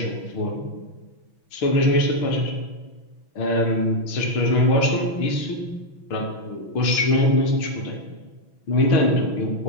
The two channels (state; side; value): late; right; 6.1 ms